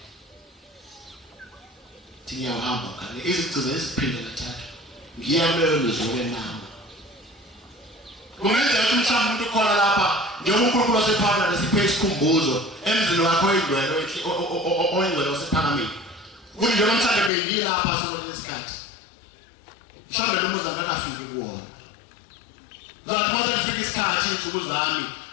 ngiyahamba ngale izigcizo eziphinde kathathu ngiyakuleyo lizwe nama kungenzeka ukuthi mhlawumbe umuntu ukhona lapha njengoba uNkulunkulu wasephakade siphe isikhumbuzo emzini wakho oyingcwele oyingcwele wasephakameni kuthi njengoba mhlawumbe bengilapha sokulesi isikhathi mhlawumbe lo muzi akakafiki kuwona zathi mase kufika isikhathi insuku zami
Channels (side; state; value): right; drops out; at 17.3 s